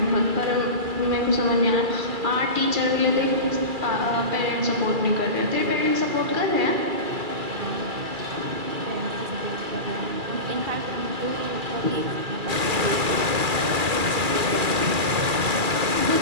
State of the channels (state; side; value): late; left; 2.4 ms